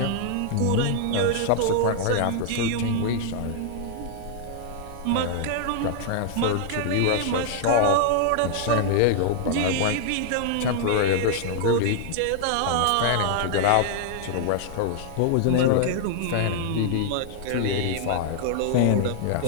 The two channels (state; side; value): different; both; correlation -0.01